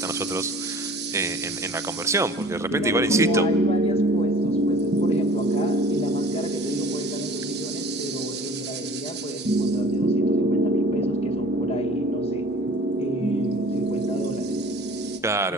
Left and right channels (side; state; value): both; normal; correlation 0.47